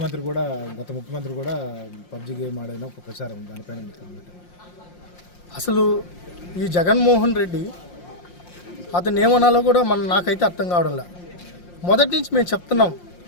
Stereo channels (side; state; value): right; late; 5.7 ms